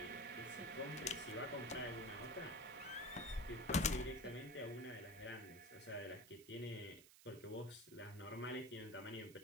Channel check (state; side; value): noise; right; hiss, 18 dB below the sound